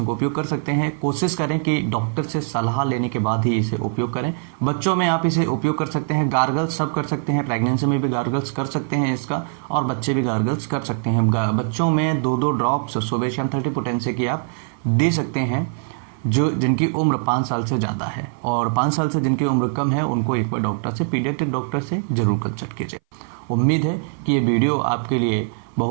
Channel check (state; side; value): silent; left; 59 dB below the other